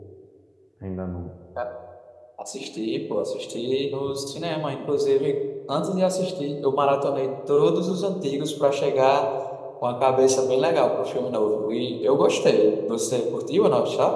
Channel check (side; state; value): both; identical; correlation 1.00